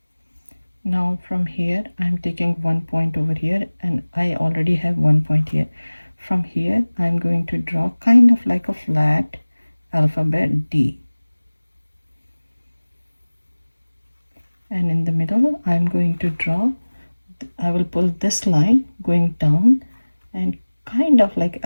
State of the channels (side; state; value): both; inverted; correlation -1.00